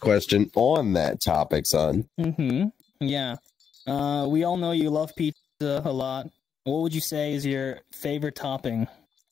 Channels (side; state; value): right; quieter; 7.4 dB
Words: on that topic, son. Yeah. We all know you love pizza a lot. What would you say is your favorite topping?